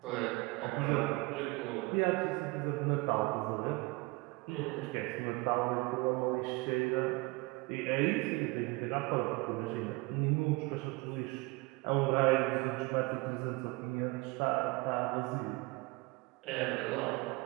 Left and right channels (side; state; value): left; quieter; 24.8 dB